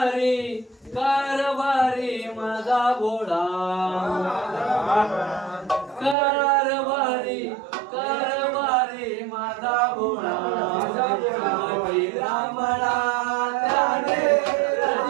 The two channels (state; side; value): drops out; left; at 6.2 s